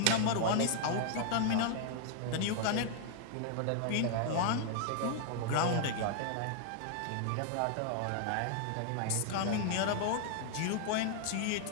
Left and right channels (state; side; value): different; both; correlation 0.00